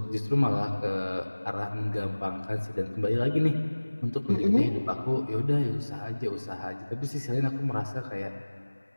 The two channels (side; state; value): both; inverted; correlation -1.00